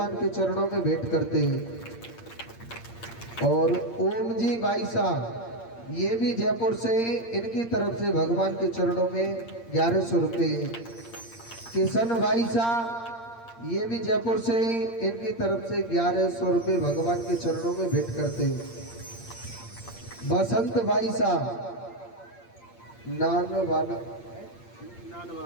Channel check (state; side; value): late; right; 8.7 ms